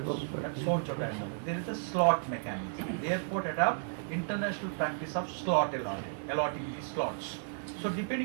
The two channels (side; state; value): left; silent; digital silence